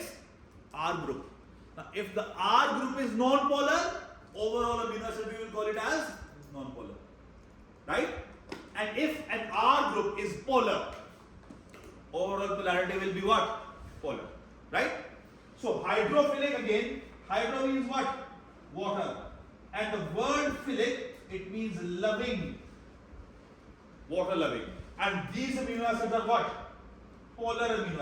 R group. Now if the R group is non-polar, overall amino acid we will call it as non-polar. Right? And if an R group is polar, overall polarity will be what? Polar. Right? So hydrophilic again, hydro means what? Water. And the word philic, it means loving. Water loving. And these amino acids are what? Polar amino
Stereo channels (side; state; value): both; identical; correlation 1.00